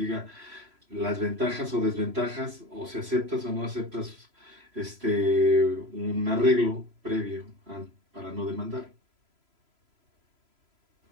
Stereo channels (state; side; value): late; left; 3.0 ms